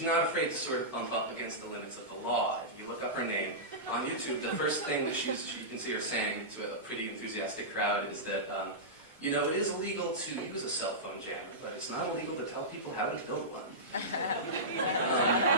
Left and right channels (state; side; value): normal; both; correlation -0.15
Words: not afraid to sort of bump up against the limits of the law. If you look up her name on YouTube, the first thing that you can see her saying to a pretty enthusiastic crowd is that, it is illegal to use a cell phone jammer, but it's not illegal to tell people how to build one.